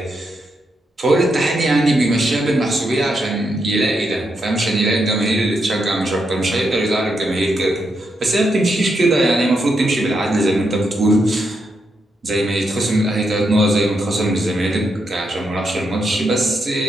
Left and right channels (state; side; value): normal; both; correlation 0.82